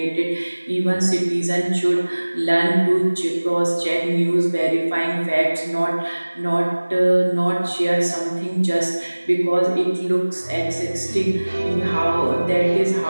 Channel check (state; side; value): inverted; both; correlation -1.00